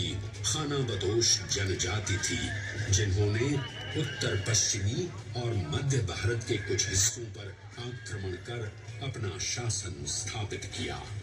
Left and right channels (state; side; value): identical; both; correlation 1.00